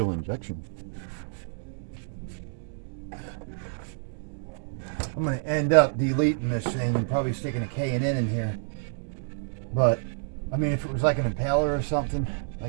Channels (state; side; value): silent; left; digital silence